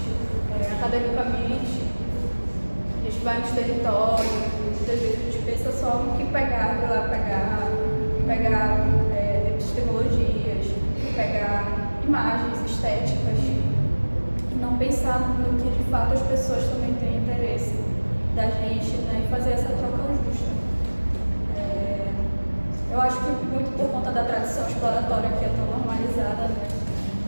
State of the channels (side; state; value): both; inverted; correlation -1.00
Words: academicamente, a gente vai nos territórios, muitas vezes a gente pensa só no que pegar de lá, pegar epistemologias, pegar imagens estéticas, e não pensar no que de fato as pessoas também têm interesse da gente, né, e fazer essa troca justa. Eu acho que muito por conta da tradição exploratória que é tão normalizada, né,